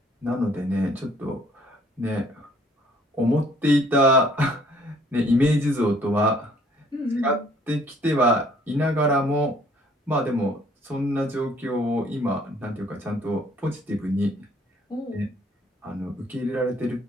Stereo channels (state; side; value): normal; both; correlation 0.60